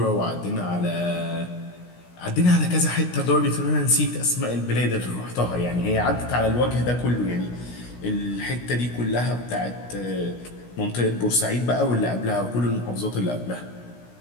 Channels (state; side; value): late; right; 16 ms